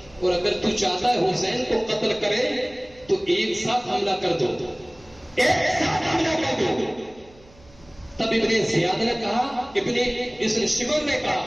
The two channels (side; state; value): right; noise; hum, 26 dB below the sound